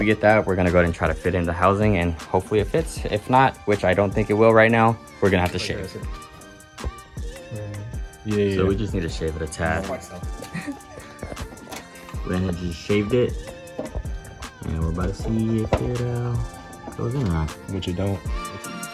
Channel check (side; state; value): both; identical; correlation 1.00